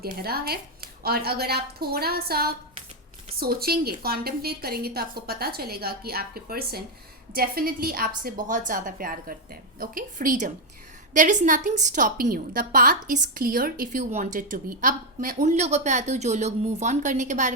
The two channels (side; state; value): both; normal; correlation 0.03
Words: गहरा है, और अगर आप थोड़ा सा सोचेंगे, कॉन्टेम्पलेट करेंगे, तो आपको पता चलेगा कि आपके पर्सन डेफिनेटली आपसे बहुत ज़्यादा प्यार करते हैं। Okay, freedom, there is nothing stopping you, the path is clear if you wanted to be. अब मैं उन लोगों पे आती हूँ जो लोग मूव ऑन करने के बारे